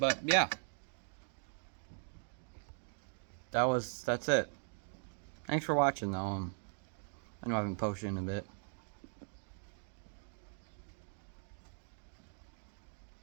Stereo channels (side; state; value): left; silent; digital silence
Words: yeah. That's it. Thanks for watching though. I know I haven't posted in a bit.